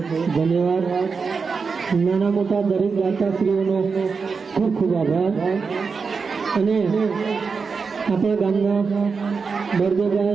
ધન્યવાદ. નાના મોટા દરેક દાતાશ્રીઓનો ખૂબ ખૂબ આભાર. અને આપણા ગામના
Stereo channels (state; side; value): quieter; left; 5.1 dB